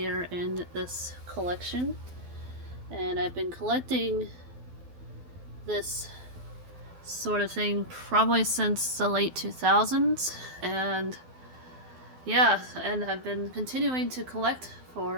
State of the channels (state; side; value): late; left; 12 ms